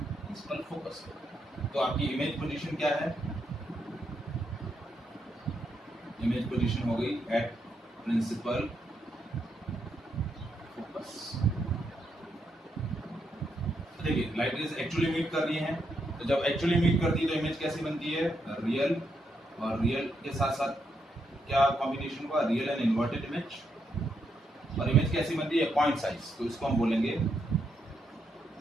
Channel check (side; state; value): both; normal; correlation 0.79